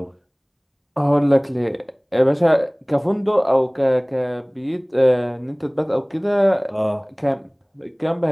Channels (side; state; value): both; identical; correlation 1.00